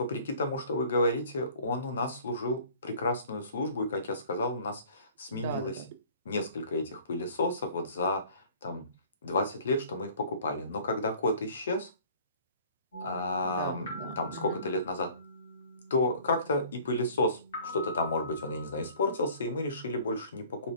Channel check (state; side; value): inverted; both; correlation -0.50